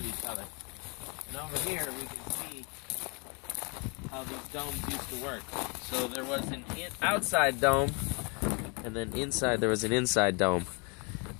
each other. And over here we can see how these domes used to work. So there was an outside dome, and then inside there was an inside dome.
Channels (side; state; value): right; quieter; 33.3 dB